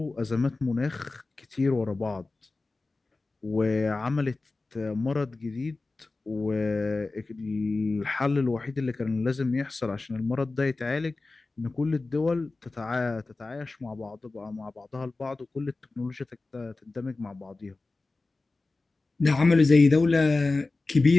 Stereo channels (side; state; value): right; quieter; 3.4 dB